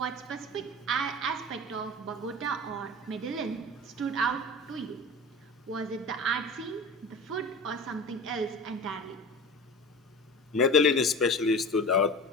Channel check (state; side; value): normal; both; correlation 0.34